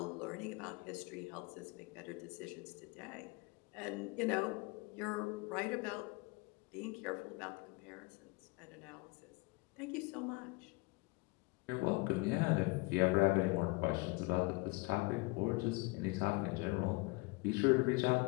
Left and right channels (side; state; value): right; quieter; 26.5 dB